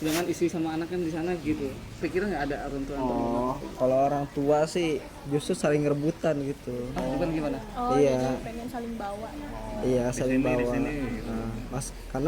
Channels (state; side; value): identical; both; correlation 1.00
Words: istri sama anak kan di sana gitu. Pikiran nggak ada orang tua antum? Oh, kalau orang tua sih justru saling rebutan gitu. Bukan gimana? Oh, Iya. jadi pengen saling bawa. Iya, saling sini, di bawa. sini. Nah, mas